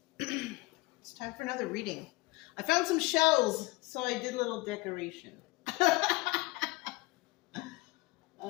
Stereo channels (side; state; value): right; quieter; 22.5 dB